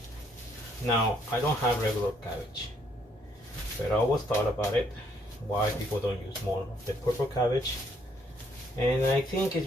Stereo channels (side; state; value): both; normal; correlation 0.69